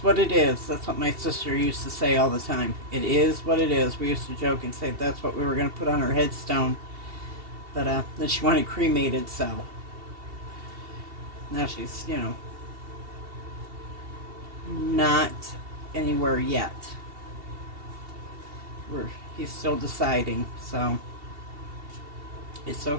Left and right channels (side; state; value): left; late; 2.7 ms